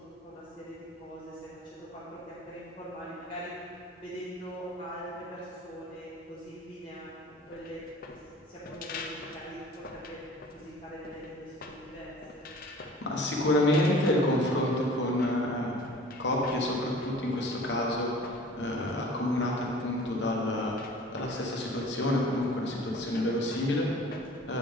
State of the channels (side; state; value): both; normal; correlation 0.46